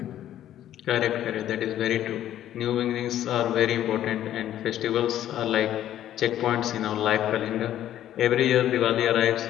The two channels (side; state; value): right; quieter; 11.9 dB